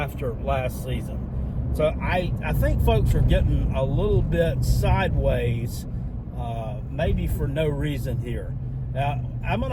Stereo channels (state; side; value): identical; both; correlation 1.00